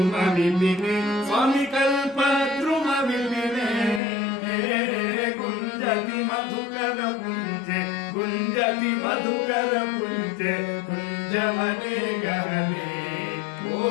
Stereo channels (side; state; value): right; drops out; at 4.0 s